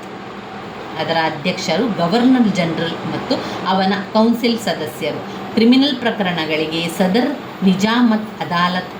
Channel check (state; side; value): identical; both; correlation 1.00